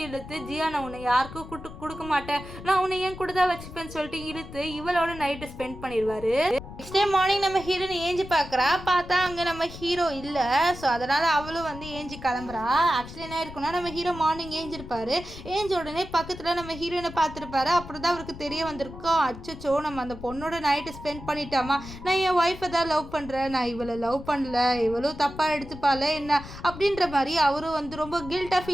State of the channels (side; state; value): left; noise; rumble, 14 dB below the sound